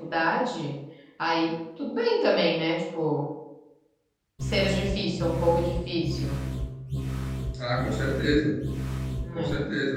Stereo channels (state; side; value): identical; both; correlation 1.00